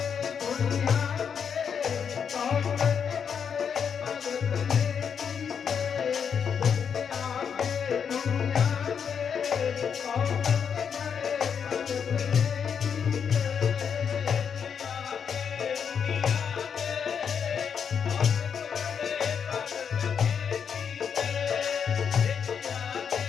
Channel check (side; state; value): right; quieter; 7.1 dB